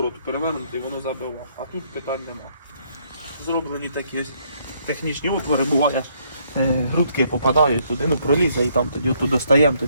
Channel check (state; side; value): inverted; both; correlation -0.69